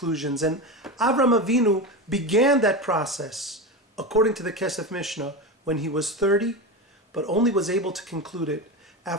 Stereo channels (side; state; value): both; normal; correlation 0.21